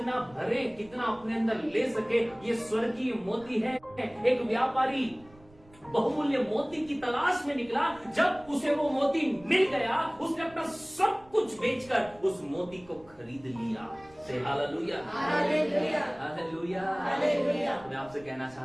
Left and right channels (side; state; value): right; noise; rumble, 26 dB below the sound